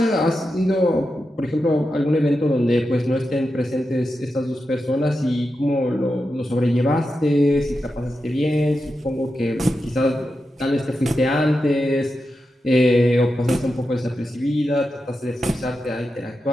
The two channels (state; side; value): normal; both; correlation 0.89